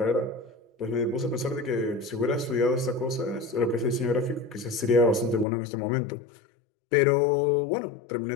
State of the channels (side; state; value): right; drops out; at 5.5 s